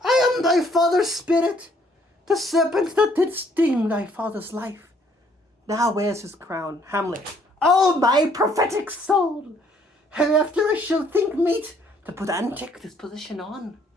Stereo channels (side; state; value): both; normal; correlation 0.64